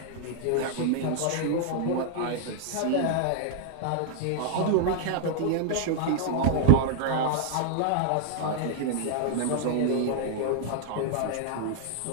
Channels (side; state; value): both; different; correlation -0.01